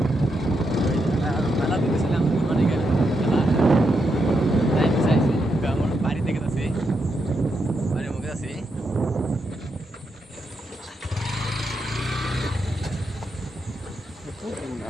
মেলা দিতেছিলাম মানে মেলা চাইছি আমার বাড়ি থেকে আছি, বাড়ির মুখে আছি।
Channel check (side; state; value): both; normal; correlation 0.82